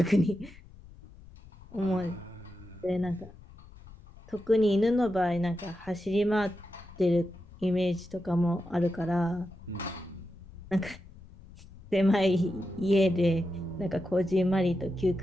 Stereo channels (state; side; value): noise; left; rumble, 20 dB below the sound